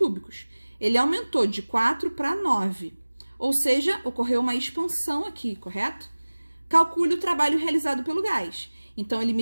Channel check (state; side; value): inverted; both; correlation -1.00